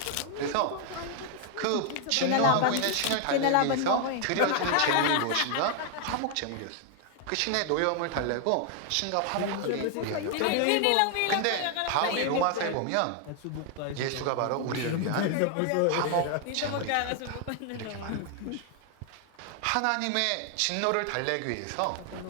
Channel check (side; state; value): both; different; correlation 0.00